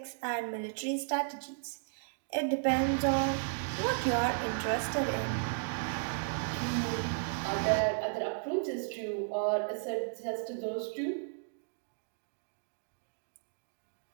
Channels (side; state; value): left; silent; digital silence